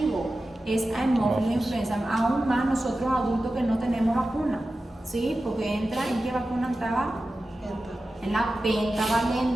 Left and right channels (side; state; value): both; normal; correlation 0.94